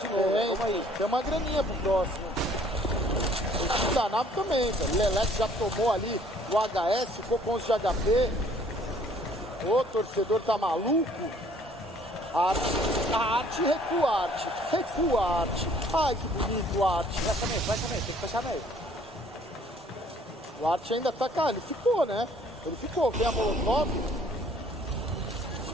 de novo. Vamos aí. Tem uma graninha pro próximo. O time da nave também, velho. Leleque já tomou ali o HS, ficou com 11 de HP. O torcedor tá maluco. Arte, recua, Arte. Recua, Arte. Ai, que bonito, Arte. Vai também, tem que fechar meio. O Arte ainda tá, cara, ele ficou, né? Ele ficou, vem a molotov,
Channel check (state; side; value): normal; both; correlation 0.58